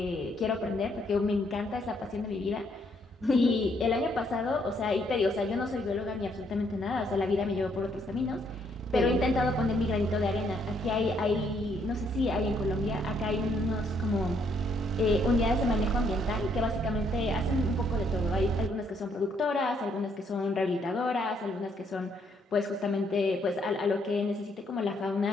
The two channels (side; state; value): both; normal; correlation 0.71